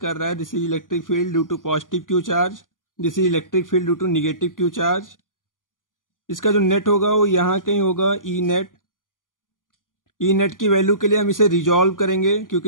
रहा है। This is electric field due to positive Q charge, this is electric field due to negative Q charge. इसका जो नेट होगा वो यहाँ कहीं होगा ई नेट। ई नेट की वैल्यू के लिए हम इसे रिजॉल्व करेंगे,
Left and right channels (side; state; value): right; late; 0.89 ms